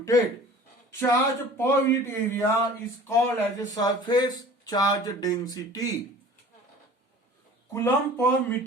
Charge per unit area is called as a surface charge density. Coulomb per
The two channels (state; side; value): normal; both; correlation 0.45